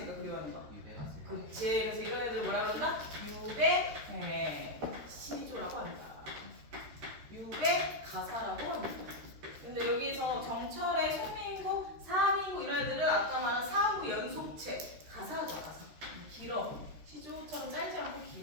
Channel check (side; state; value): left; late; 13 ms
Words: 그리워하는 거야? 유배가 쓸 거예요. 그치. 그래서 이런 애들 뭐라 그런다? 유배 시조라고 합니다. 유배 가사라고 합니다. 근데 여기서 정철의 송민고, 사민고 이런 애들은 아까 말한 사음부 연속체 가사죠, 가사. 길어. 시조처럼 짧지 않고